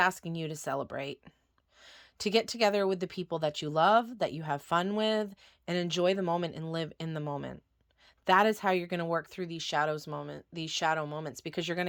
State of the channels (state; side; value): identical; both; correlation 1.00